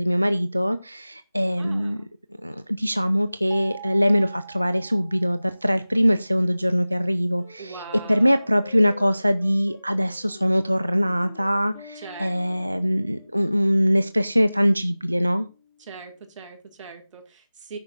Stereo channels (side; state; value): both; inverted; correlation -0.98